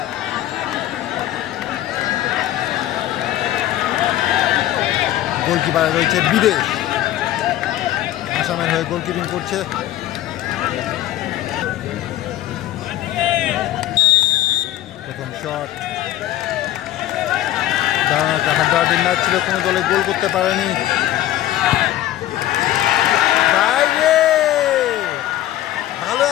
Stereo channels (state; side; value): quieter; right; 13.7 dB